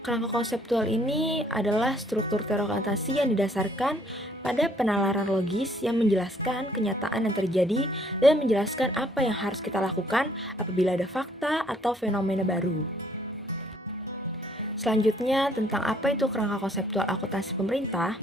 kerangka konseptual ini adalah struktur teori akuntansi yang didasarkan pada penalaran logis yang menjelaskan kenyataan yang terjadi dan menjelaskan apa yang harus kita lakukan apabila ada fakta atau fenomena baru. Selanjutnya, tentang apa itu kerangka konseptual akuntansi pemerintah,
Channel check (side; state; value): both; normal; correlation 0.64